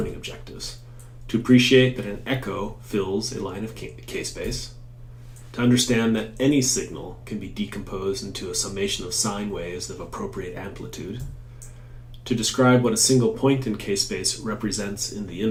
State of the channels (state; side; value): identical; both; correlation 1.00